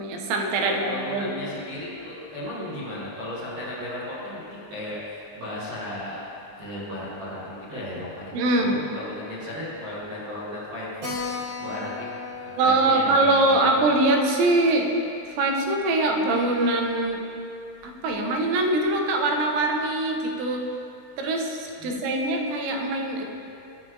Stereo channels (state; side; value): late; left; 20 ms